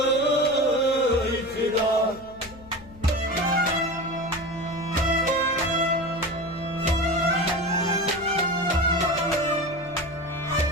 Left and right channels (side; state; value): left; noise; hum, 21 dB below the sound